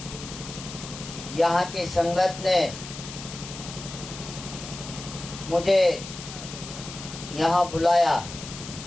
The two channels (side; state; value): left; noise; hiss, 12 dB below the sound